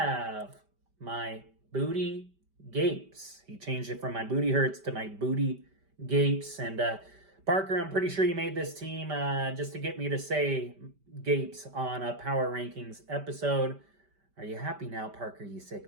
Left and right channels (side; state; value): left; late; 5.1 ms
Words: my Booty Gapes. He changed it from my Booty Hurts to my Booty Gapes. And Parker, I'm pretty sure you made this team just to get me to say Gapes on a Power Rankings episode. Are you happy now, Parker, you